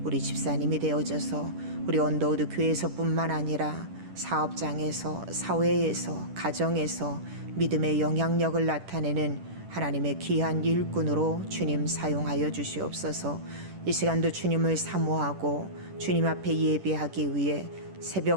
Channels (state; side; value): late; left; 10 ms